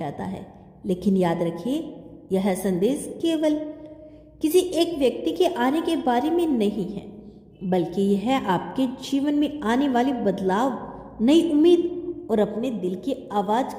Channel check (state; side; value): identical; both; correlation 1.00